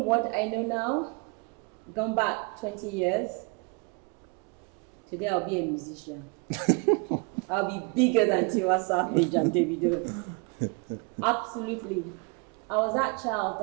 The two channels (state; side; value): quieter; left; 32.4 dB